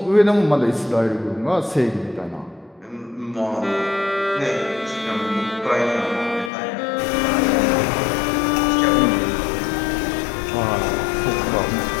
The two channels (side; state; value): right; drops out; at 6.5 s